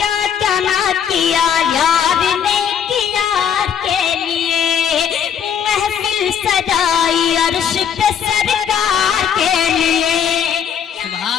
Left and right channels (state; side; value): quieter; right; 8.2 dB